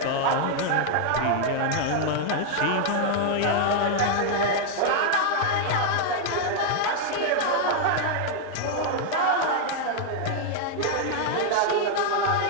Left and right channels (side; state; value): both; different; correlation 0.00